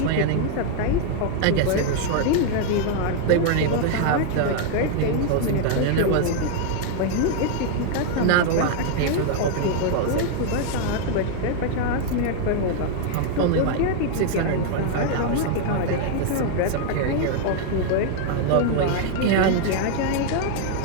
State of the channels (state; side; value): different; both; correlation 0.00